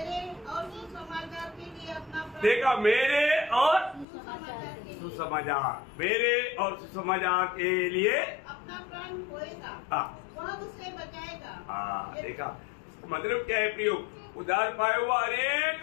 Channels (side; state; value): right; drops out; at 4.0 s